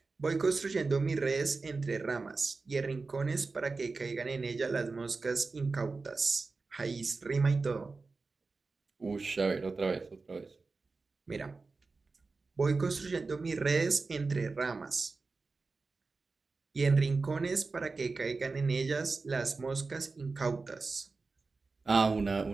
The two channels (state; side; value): quieter; left; 4.0 dB